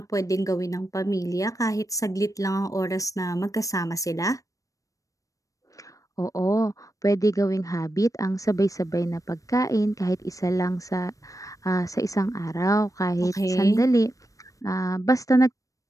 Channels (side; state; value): right; late; 0.16 ms